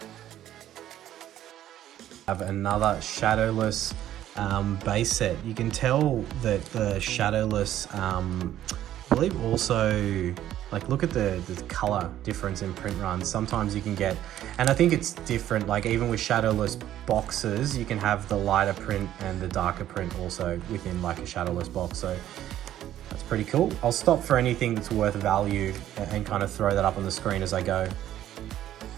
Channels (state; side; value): quieter; left; 12.3 dB